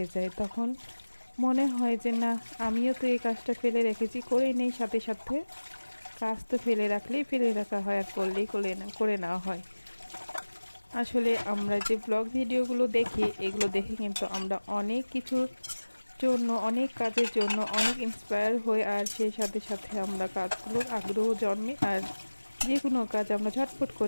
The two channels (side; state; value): both; inverted; correlation -1.00